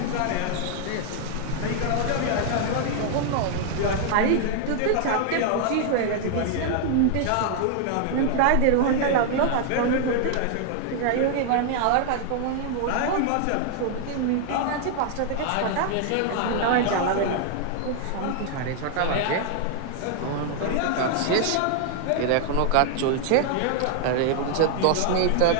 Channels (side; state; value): both; different; correlation 0.00